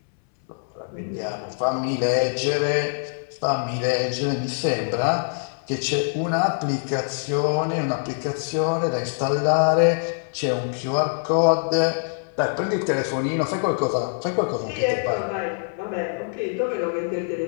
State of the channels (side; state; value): right; silent; 63 dB below the other